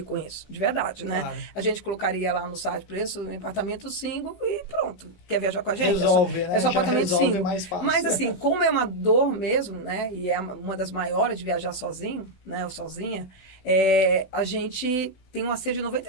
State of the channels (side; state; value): right; late; 19 ms